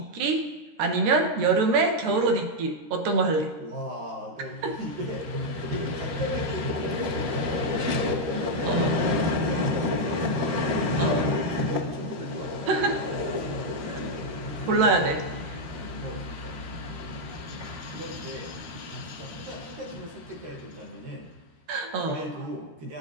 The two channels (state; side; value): late; left; 13 ms